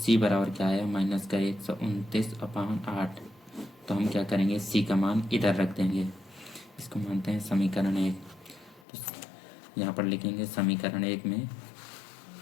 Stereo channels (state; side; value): drops out; right; at 8.8 s